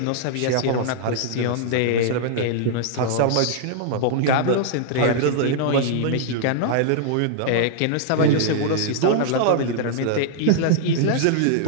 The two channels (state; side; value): different; both; correlation -0.01